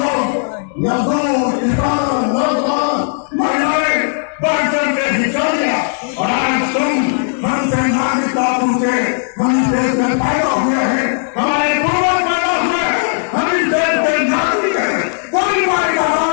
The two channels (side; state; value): right; silent; 69 dB below the other